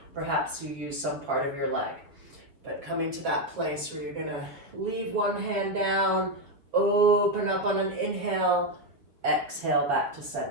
perhaps you use some part of your leg. But coming to that place where you're going to leave one hand down, open up on an inhale, exhale back to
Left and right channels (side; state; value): left; late; 7.3 ms